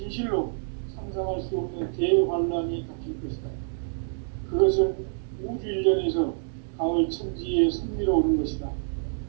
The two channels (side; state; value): left; silent; digital silence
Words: 상상할 수 없는 대환란이 닥칠 것이다. 그것은 우주 일전에서 가을 천지에 선미로 오는 것이다.